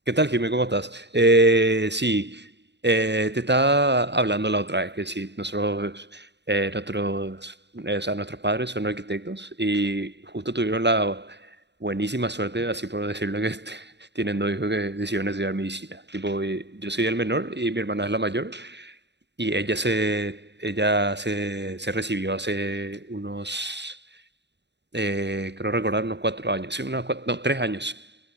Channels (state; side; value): late; left; 0.50 ms